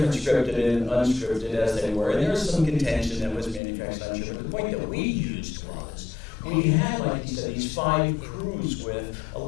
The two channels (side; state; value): right; drops out; at 3.6 s